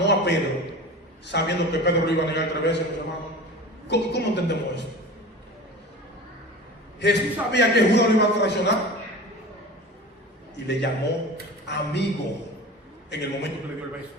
a Pedro, sabiendo que Pedro lo iba a negar 3 veces, mis hermanos. ¿Cómo entendemos eso? Jesús sabía que Judas lo iba a traicionar y le llamó amigo en el momento que le dio el beso.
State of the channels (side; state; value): both; normal; correlation 0.35